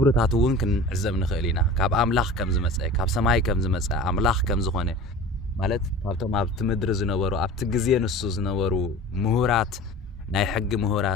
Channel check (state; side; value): normal; both; correlation 0.37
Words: እውን ክንዕዘብ ንኽእል ኢና ካብ አምላኽ ከም ዝመጸ ካብ ሰማይ ከም ዝመጸ አምላኽ ከም ዝኾነ ማለት ካብቶም ኣብቲ ምድሪ ዝነበሩ ኣብቲ ግዜ ንሱ ዝነበሩ ምሁራት ናይ ሕጊ